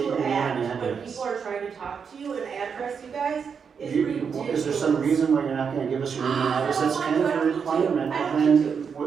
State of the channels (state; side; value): quieter; left; 6.4 dB